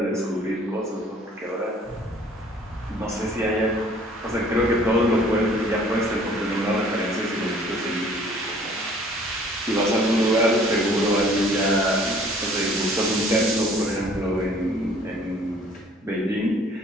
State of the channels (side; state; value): both; normal; correlation 0.55